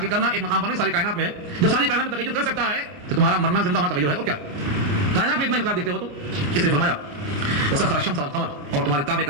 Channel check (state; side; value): late; left; 28 ms